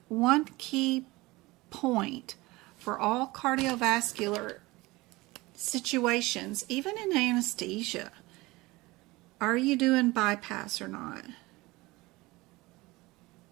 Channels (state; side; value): quieter; left; 21.3 dB